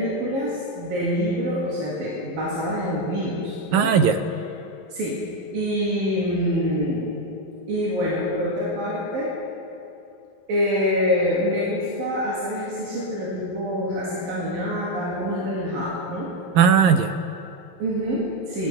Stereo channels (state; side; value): late; left; 11 ms